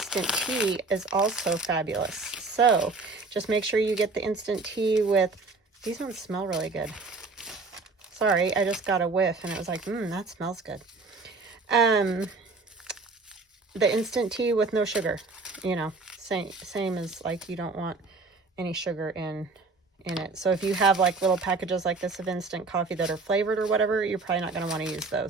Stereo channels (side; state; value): left; quieter; 3.9 dB